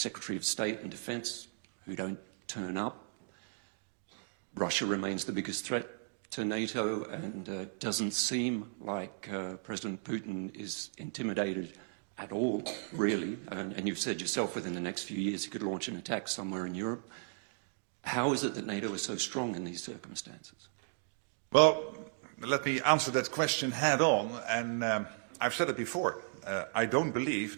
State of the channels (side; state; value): left; silent; digital silence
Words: of State and Defense who don't turn up. Russia remains the biggest threat to NATO, and doesn't seem like President Putin is intimidated at all, really. And you've said yourself within the next few years he could launch an attack somewhere in Europe. How is it that NATO is so strong in these circumstances? Well, let me answer that question head on, and I've said it before. I don't